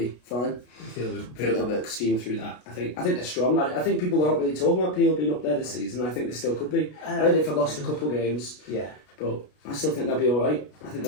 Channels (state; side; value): late; right; 33 ms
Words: fine. They'll be steam through that. I think they're strong. I think people aren't really talking about Peel being up there this season. I think they still could be. I know they've lost a couple of games. Yeah. But I still think they'll be all right. I think